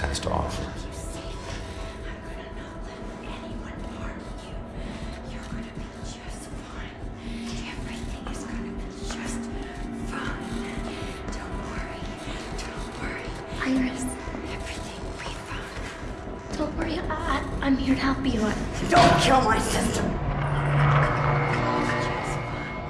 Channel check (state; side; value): identical; both; correlation 1.00